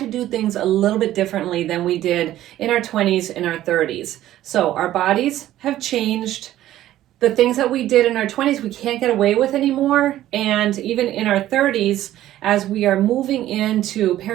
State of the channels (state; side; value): quieter; left; 13.6 dB